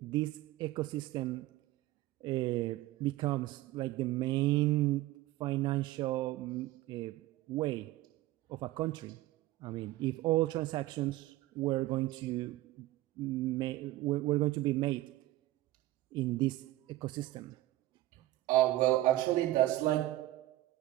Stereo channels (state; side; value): quieter; left; 16.6 dB